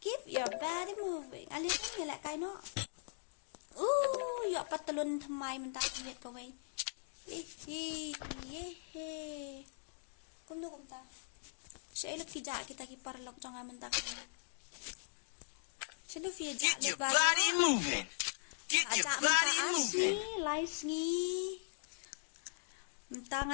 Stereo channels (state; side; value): silent; right; digital silence